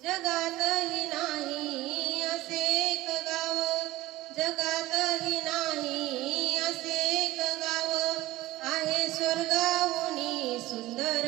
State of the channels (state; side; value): quieter; left; 17.5 dB